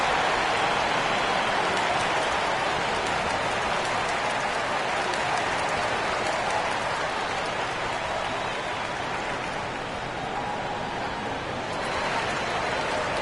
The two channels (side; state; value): both; identical; correlation 1.00